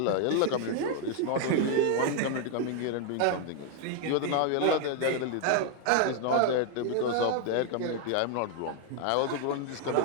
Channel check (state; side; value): different; both; correlation 0.00